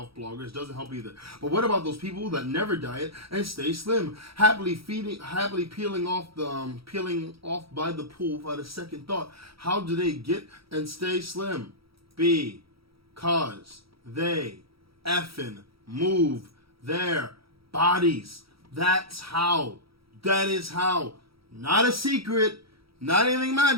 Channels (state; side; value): late; left; 0.75 ms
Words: bloggers doesn't help either. But what about those people that never diet and stay slim, happily peeling off by the pool without a second thought? How do they get and stay slim? Because they effing move their bodies. That's how. That is how. Not a secret. Not anything